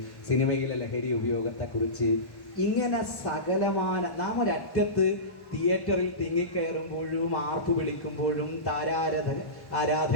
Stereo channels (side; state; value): right; late; 1.1 ms